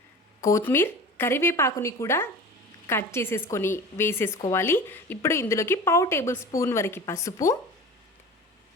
కొత్తిమీర, కరివేపాకుని కూడా కట్ చేసేసుకొని వేసేసుకోవాలి. ఇప్పుడు ఇందులోకి 1/2 టేబుల్ స్పూన్ వరకు పసుపు,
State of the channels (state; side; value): normal; both; correlation 0.35